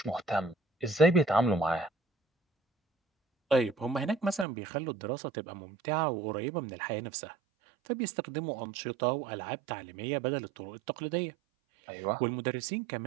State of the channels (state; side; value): drops out; left; at 4.5 s